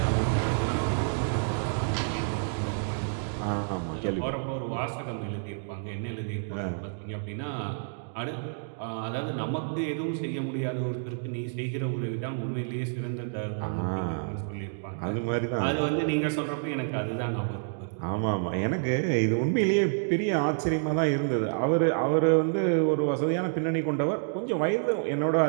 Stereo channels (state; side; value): silent; left; digital silence